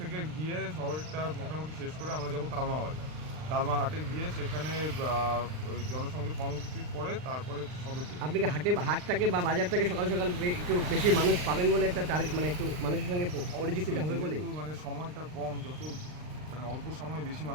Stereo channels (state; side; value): late; left; 39 ms